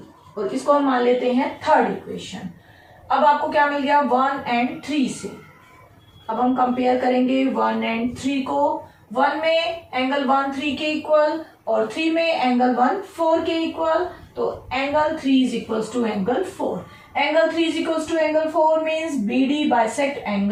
और इसको हम मान लेते हैं थर्ड इक्वेशन। अब आपको क्या मिल गया 1 एंड 3 से? अब हम कंपेयर करेंगे 1 एंड 3 को। 1 में एंगल 1 3 के इक्वल और 3 में एंगल 1 4 के इक्वल, तो angle 3 is equals to angle 4। Angle 3 is equals to angle 4 means BD bisect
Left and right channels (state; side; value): identical; both; correlation 1.00